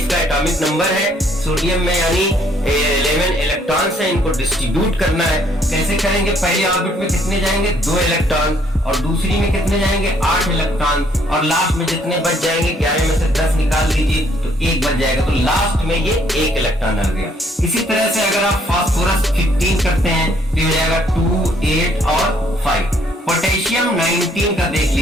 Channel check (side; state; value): both; normal; correlation 0.66